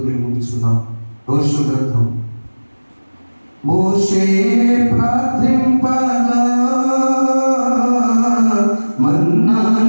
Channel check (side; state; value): both; inverted; correlation -1.00